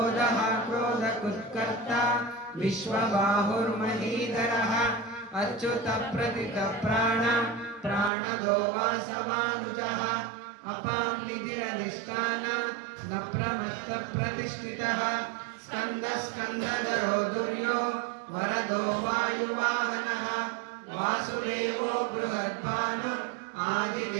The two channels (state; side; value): drops out; left; at 8.1 s